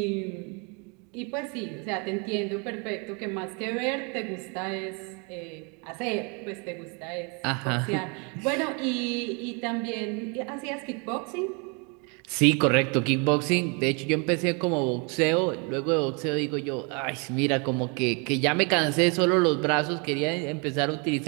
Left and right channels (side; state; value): left; quieter; 33.4 dB